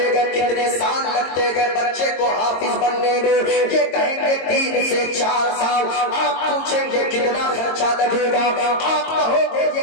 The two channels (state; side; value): late; right; 22 ms